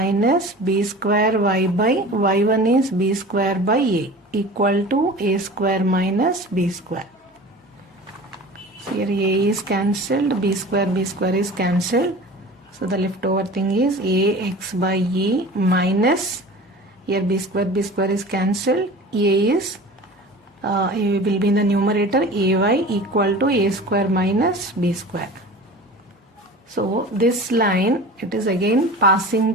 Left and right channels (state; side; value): normal; both; correlation 0.38